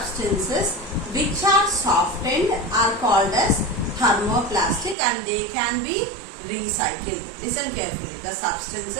which are softened are called as thermoplastic and they can be recycled. Listen carefully. The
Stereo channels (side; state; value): left; drops out; at 5.0 s